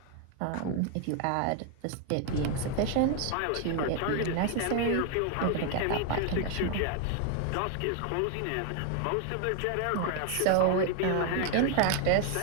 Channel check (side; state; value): both; different; correlation 0.01